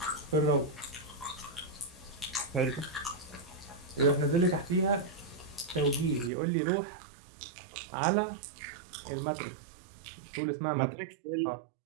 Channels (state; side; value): drops out; left; at 6.3 s